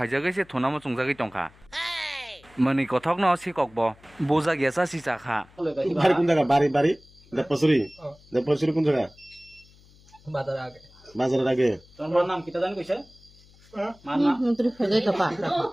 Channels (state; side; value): noise; left; hum, 27 dB below the sound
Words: se thunamo chungjagoi tongkha mani kothok no sikok bo boja gesa si chakha বাড়ি কোন জায়গা বাড়ি দেবপসুরি কোন জায়গা বাজারের আগে তোমার নাম কিটা জানি কইছে মার নাম মন্ত্রী ফেজাই কাপা